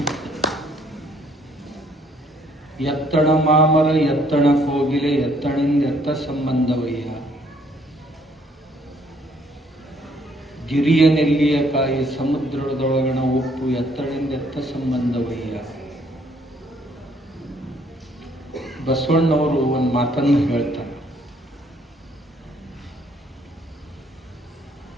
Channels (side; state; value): both; normal; correlation 0.65